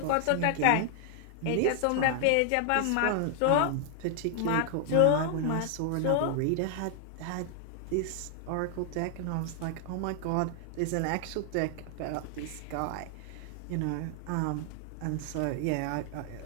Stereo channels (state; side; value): different; both; correlation 0.00